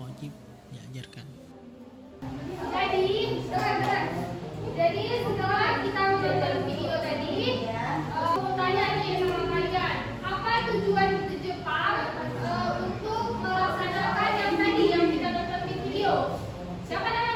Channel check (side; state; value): both; identical; correlation 1.00